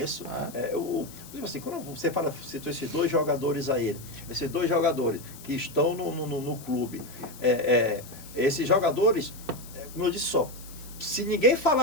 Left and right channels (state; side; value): noise; left; hiss, 18 dB below the sound